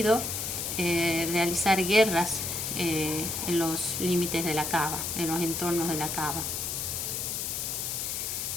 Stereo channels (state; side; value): noise; left; hiss, 2 dB below the sound